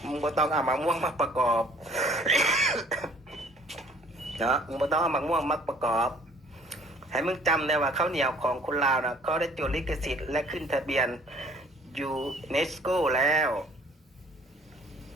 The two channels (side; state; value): both; normal; correlation 0.56